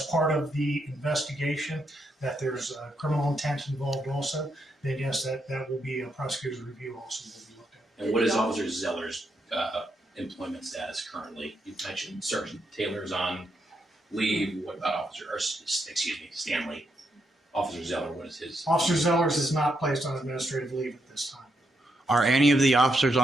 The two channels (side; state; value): both; normal; correlation 0.80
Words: part of the investigation, that there's criminal intent involved also, then yes, that will be a prosecutor's review also will be looked at. And what is Officer Zeller's employment status currently? You mentioned Sergeant Taylor's on leave. What about Stanley? Officer Zeller, what is his? Officer Zeller's is not placed on administrative leave at this time. Are any of the officers